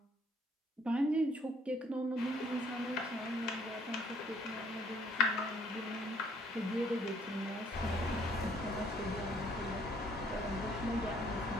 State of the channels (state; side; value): normal; both; correlation 0.63